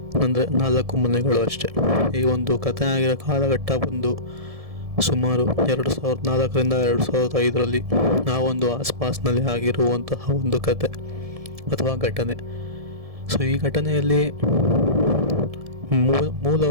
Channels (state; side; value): late; left; 1.7 ms